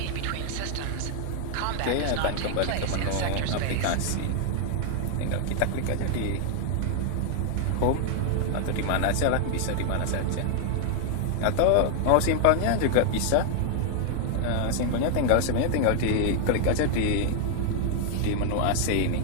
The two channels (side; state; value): both; different; correlation 0.00